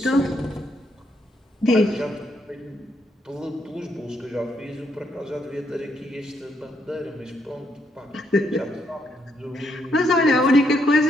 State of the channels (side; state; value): both; normal; correlation 0.76